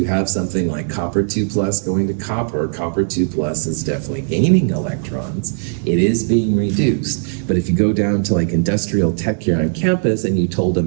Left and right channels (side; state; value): left; silent; 64 dB below the other